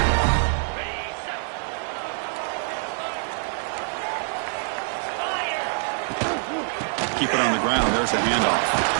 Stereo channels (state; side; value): silent; left; 60 dB below the other